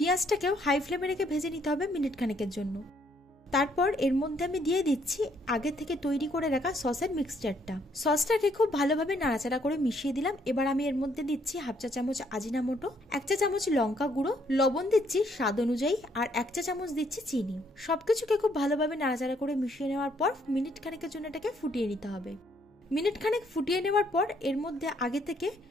হাই ফ্লেমে রেখে ভেজে নিতে হবে মিনিট খানেকের জন্য। তারপর এর মধ্যে আমি দিয়ে দিচ্ছি আগে থেকে তৈরি করে রাখা সসের মিক্সচারটা। সসটাকে খুব ভালোভাবে নাড়াচাড়া করে মিশিয়ে দিলাম। এবার আমি এর মধ্যে দিচ্ছি হাফ চা চামচ আজিনামোটো, 1 চা চামচ লঙ্কা গুঁড়ো, লবণ দিচ্ছি স্বাদ অনুযায়ী, আর 1 চা চামচ দিচ্ছি চিনি। সবকিছুকে খুব ভালোভাবে নাড়াচাড়া করে মিশিয়ে নেওয়ার পর মিনিট খানেকের জন্য এটাকে ফুটিয়ে নিতে হবে। মিনিট খানেক ফুটিয়ে নেওয়ার পর এর মধ্যে আগে থেকে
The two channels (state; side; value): normal; both; correlation 0.69